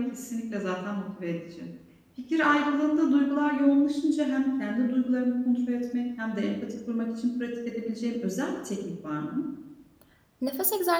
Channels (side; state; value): both; identical; correlation 1.00